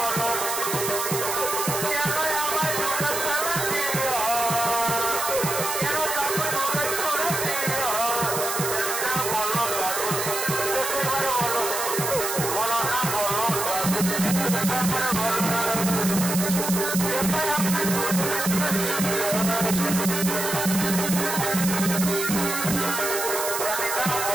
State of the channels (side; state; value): right; noise; hiss, 3 dB below the sound